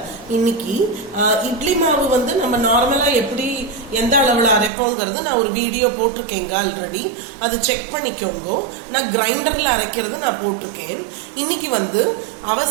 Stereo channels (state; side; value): drops out; left; at 4.7 s